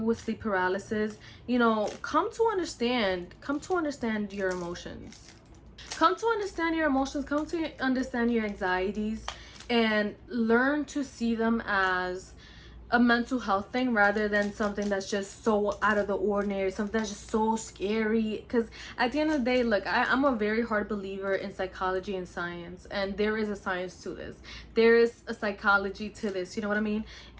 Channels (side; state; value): both; identical; correlation 1.00